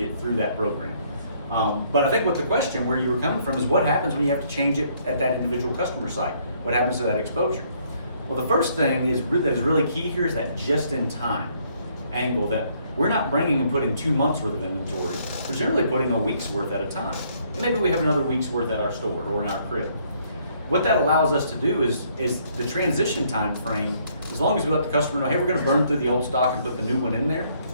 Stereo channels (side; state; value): both; inverted; correlation -0.67